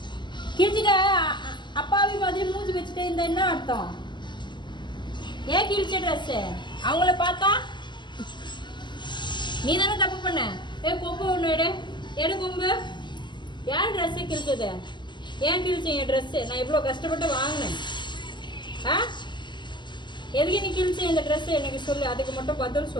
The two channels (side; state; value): right; late; 0.22 ms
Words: கிழிச்சிட்ட அப்பாவி மாதிரி மூஞ்சி வச்சுட்டு இந்த என்ன அர்த்தம்? ஏன் கிழிச்ச ட்ரெஸ்ஸு? அவங்கள பார்த்தா நீ தானே தப்பு பண்ண. கொம்பு ஒன்று எடு கொம்பு. யார் ட்ரெஸ்ஸு கிழிச்சது? ஏன் கிழிச்சேன் என் ட்ரெஸ்ஸு? நான் இவ்வளோ கஷ்டப்பட்டு வாங்கினேன். ஆ, எதுக்கு நீ கிழிச்ச இந்த ட்ரெஸ்ஸு எனக்கு சொல்லு. அதுக்கு மட்டும் பதில்